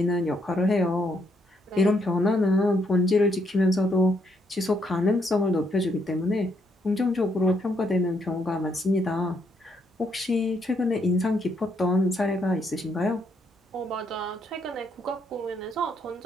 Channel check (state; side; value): normal; both; correlation 0.74